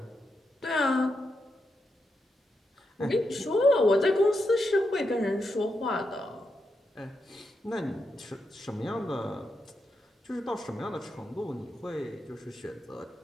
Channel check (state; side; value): normal; both; correlation 0.84